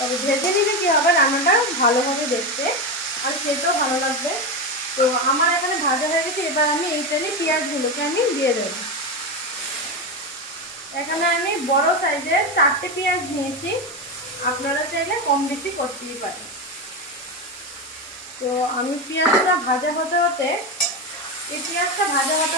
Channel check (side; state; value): both; normal; correlation 0.15